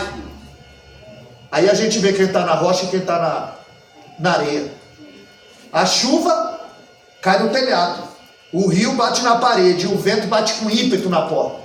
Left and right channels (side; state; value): both; identical; correlation 1.00